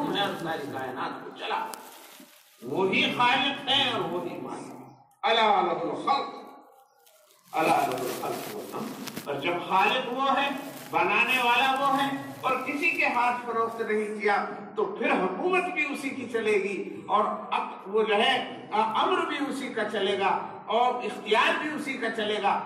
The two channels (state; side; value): identical; both; correlation 1.00